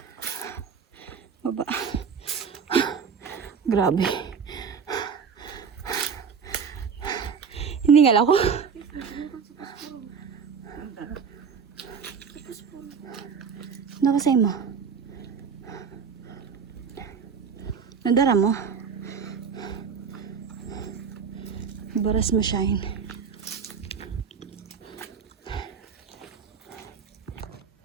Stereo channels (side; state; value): left; quieter; 6.3 dB